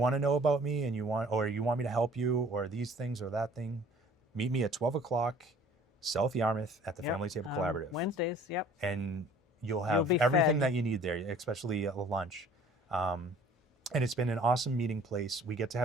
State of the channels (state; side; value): normal; both; correlation 0.52